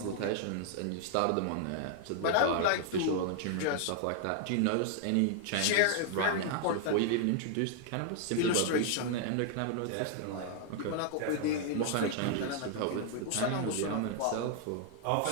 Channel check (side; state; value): both; different; correlation 0.00